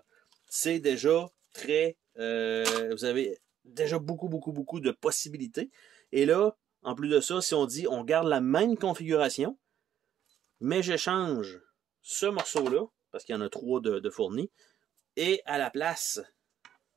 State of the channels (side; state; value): left; quieter; 10.5 dB